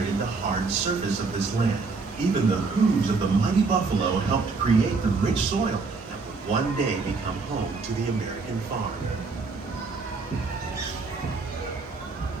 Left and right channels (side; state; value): left; quieter; 4.3 dB